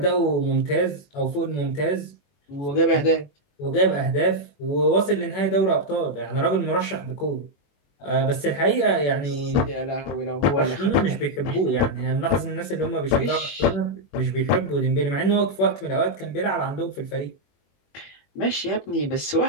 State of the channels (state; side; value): late; right; 21 ms